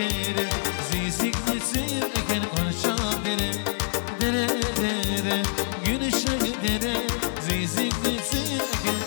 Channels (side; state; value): right; silent; 60 dB below the other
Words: Zizikli sır eken konuşan dere Dere dere, gülüşe dere Zizikli sır eken